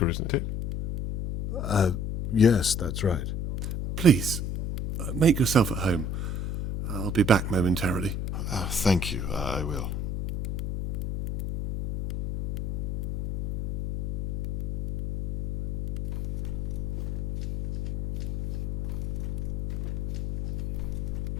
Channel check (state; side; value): noise; left; hum, 2 dB below the sound